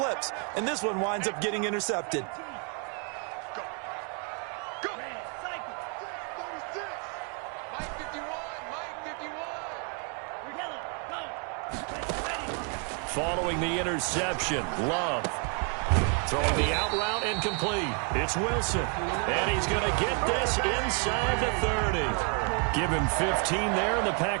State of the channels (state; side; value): quieter; left; 39.2 dB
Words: And this one winds up getting intercepted. Following the interception, Love. Throwing the out route incomplete. It's Wilson. And he's going to get this inside the 30. Give him 15 there, and the